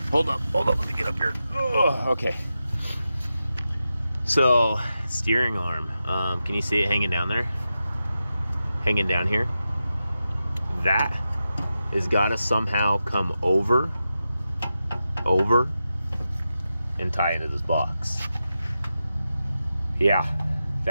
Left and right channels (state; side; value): inverted; both; correlation -0.90